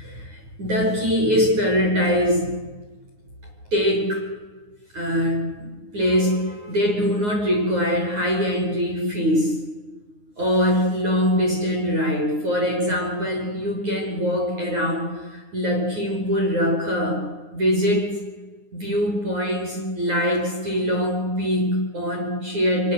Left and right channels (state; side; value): late; left; 9.6 ms